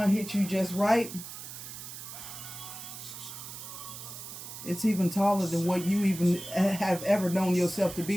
hits you just right, it's even taller than what you even have ever known yourself to be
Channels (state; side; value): noise; right; hiss, 11 dB below the sound